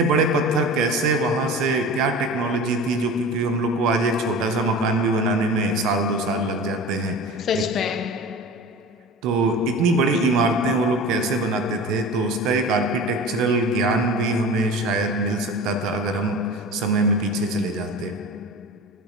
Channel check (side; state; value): both; normal; correlation 0.35